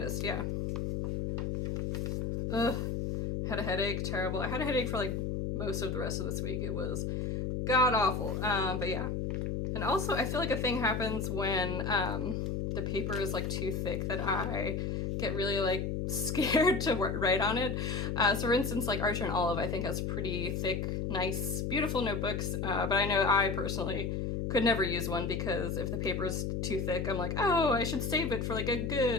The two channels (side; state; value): left; noise; hum, 1 dB below the sound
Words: yeah. Ugh, had a headache, terrible. I had a headache for like most of the rest of this week. It was god awful, but yeah. And also I feel like a thing happens when the paper is like too thick that I get really like scared to write on it. So for instance, like Archer and Olive I think has pretty thick, nice, beautiful notebooks, but I know I personally could never use one because if the paper is too thick, I'm like, oh, I should save it for like a